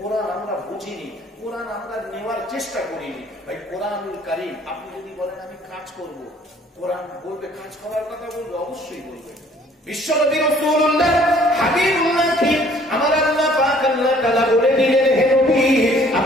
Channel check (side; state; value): both; normal; correlation 0.58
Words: আমরা বুঝিনি, কোরআন আমরা নেওয়ার চেষ্টা করিনি। ভাই কোরআনুল কারীম, আপনি যদি বলেন আমি কাজ করব, কোরআন বলবে কাজ করার কথা, বলবে অবশ্যই বলবে। বিশ্বনবী রাসূলুল্লাহ হাবিবুল্লাহ কি আমার আল্লাহ পাক আল্লাহ তাআলা বলে দিলেন, হে নবী